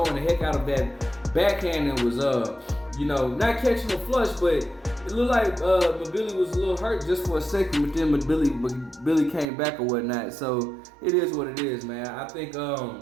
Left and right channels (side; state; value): left; drops out; at 9.5 s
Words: the heck out of that backhand and was not catching a flush, but it looked like Mbilli was a little hurt just for a second, but then Mbilli came back or whatnot. So it is what it is, man. I think